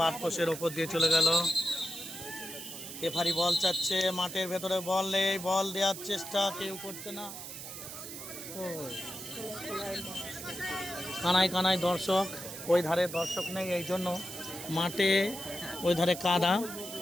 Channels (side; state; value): right; noise; hiss, 10 dB below the sound